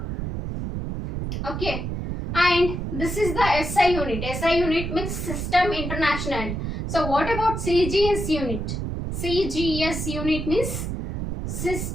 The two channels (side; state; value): right; noise; rumble, 4 dB below the sound